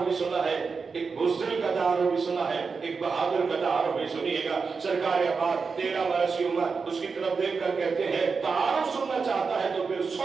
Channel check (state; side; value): quieter; left; 5.0 dB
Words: भी सुना है, एक बुज़दिल का तारुफ भी सुना है, एक बहादुर का तारुफ भी सुनिएगा। सरकार अब्बास 13 बरस की उम्र, उसकी तरफ देख कर कहते हैं तारुफ सुनना चाहता है तो फिर